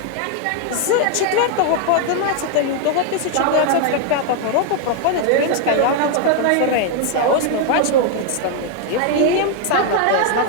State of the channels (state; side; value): different; both; correlation 0.00